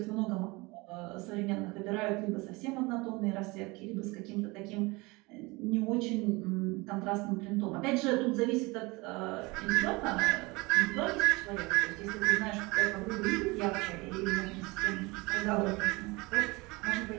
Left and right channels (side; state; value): left; quieter; 24.4 dB